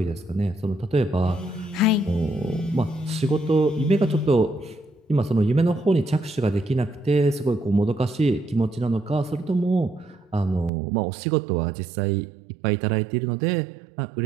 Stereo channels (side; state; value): left; drops out; at 10.7 s